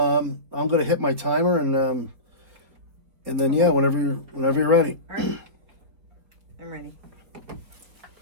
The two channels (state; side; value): late; left; 4.5 ms